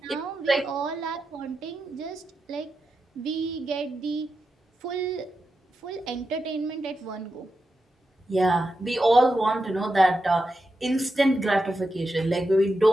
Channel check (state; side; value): normal; both; correlation 0.89